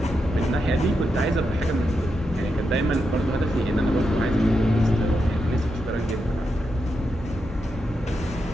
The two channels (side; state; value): both; normal; correlation 0.85